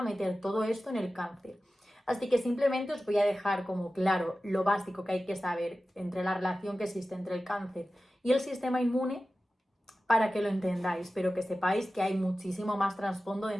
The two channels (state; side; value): normal; both; correlation 0.95